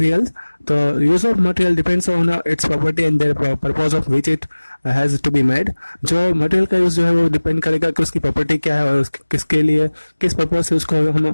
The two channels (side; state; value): both; inverted; correlation -1.00